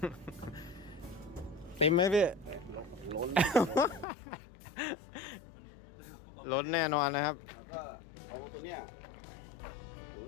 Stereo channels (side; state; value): right; drops out; at 4.0 s